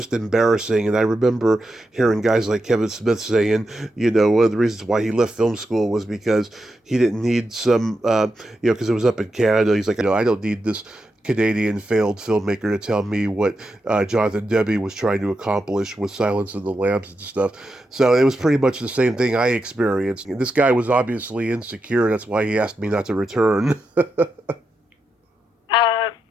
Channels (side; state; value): both; normal; correlation 0.86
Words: embarrassing. And I remember hearing guys like Kevin Smith saying, one of the reasons why he left film school was because he didn't need some, because it was up in Canada. He's like, I don't need this Canadian failed filmmaker to tell me what Jonathan Demme was trying to accomplish with Silence of the Lambs and stuff. So it was pretty much the same thing I experienced. And this guy was obviously insecure. That's why he asked me not to return. That's